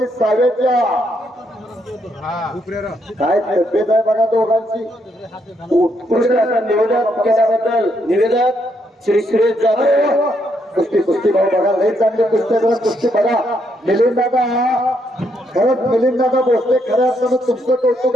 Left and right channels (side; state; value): both; normal; correlation 0.75